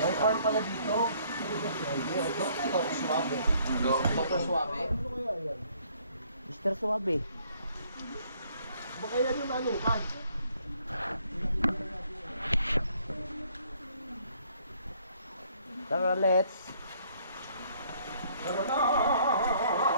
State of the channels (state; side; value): inverted; both; correlation -0.64